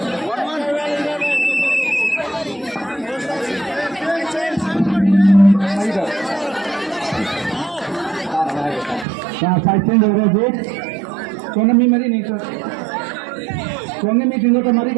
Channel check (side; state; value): left; drops out; at 9.1 s